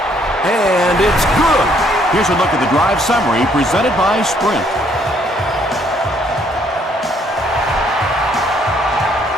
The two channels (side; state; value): both; normal; correlation 0.66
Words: And it's good. Here's a look at the drive summary presented by Sprint.